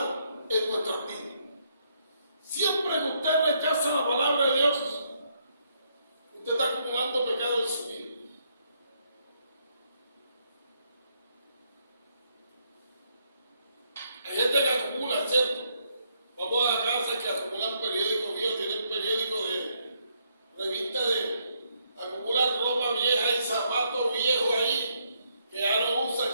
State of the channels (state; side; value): inverted; both; correlation -0.74